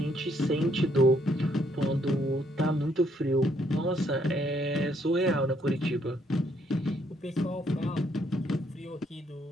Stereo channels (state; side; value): normal; both; correlation 0.70